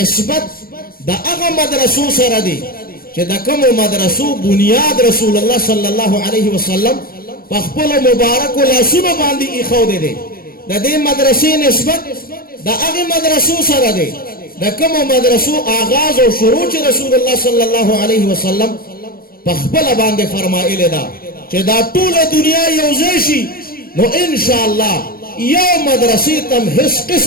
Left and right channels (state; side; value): late; right; 0.43 ms